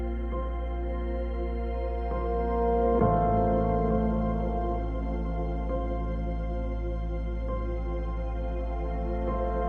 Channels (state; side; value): identical; both; correlation 1.00